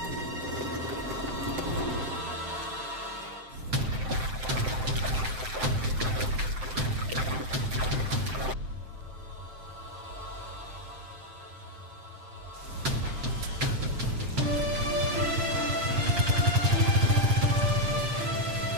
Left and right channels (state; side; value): late; left; 7.7 ms